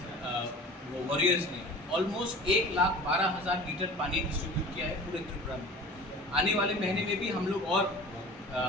वो वॉरियर्स ने ऑलमोस्ट 1,12,000 लीटर पानी डिस्ट्रीब्यूट किया है पूरे त्रिपुरा में। आने वाले महीने में भी हम लोग और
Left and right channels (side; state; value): both; normal; correlation 0.40